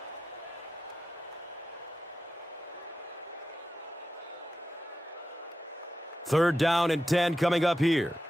Third down and 10 coming up here.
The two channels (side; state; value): both; normal; correlation 0.91